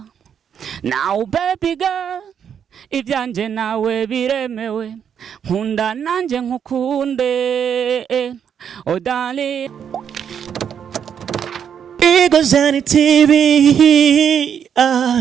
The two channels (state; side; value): quieter; left; 8.1 dB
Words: Now baby girl, ivyanje nawe biremewe, nkunda nanje nkukunde, oh darling. Igozani TV,